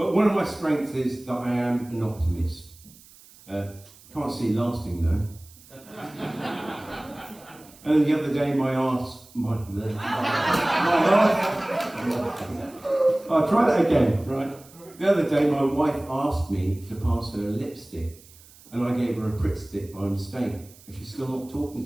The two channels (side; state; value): right; noise; hiss, 24 dB below the sound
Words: one of my strengths is that I am an optimist. Can't see it lasting though. And the other day I'll try that again, right? The other day my wife asked me to pass her a lipstick, and I gave her a Pritt stick by mistake, and she's still not talking